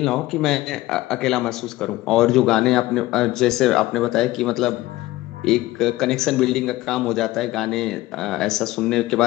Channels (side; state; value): right; quieter; 17.6 dB